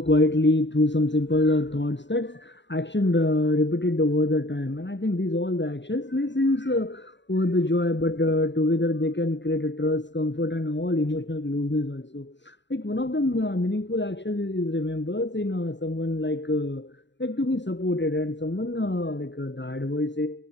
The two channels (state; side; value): late; right; 0.52 ms